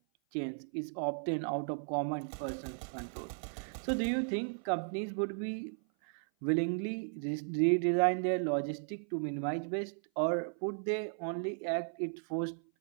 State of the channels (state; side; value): silent; left; 54 dB below the other